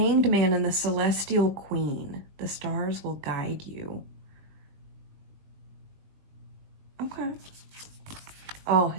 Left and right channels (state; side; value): late; left; 20 ms